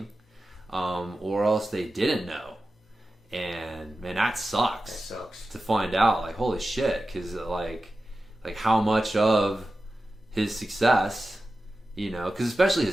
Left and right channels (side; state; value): both; normal; correlation 0.94